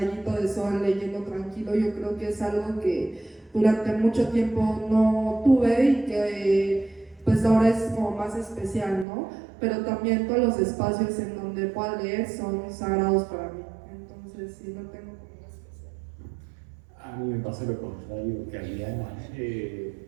de sol leyendo tranquilo. Yo creo que es algo que durante mucho tiempo no tuve y que pues pues ahora es como más especial, ¿no? Pero también todos los espacios en donde pueda leer son sagrados para mí. Entonces, sí, lo tengo como una especial. A mí me pasa lo contrario que a Diana.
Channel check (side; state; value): left; drops out; at 9.1 s